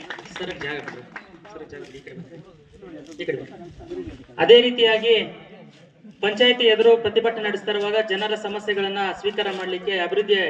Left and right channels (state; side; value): identical; both; correlation 1.00